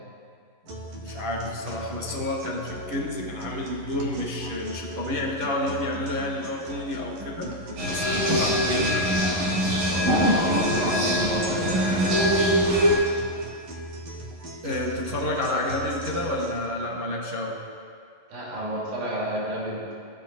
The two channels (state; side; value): late; left; 11 ms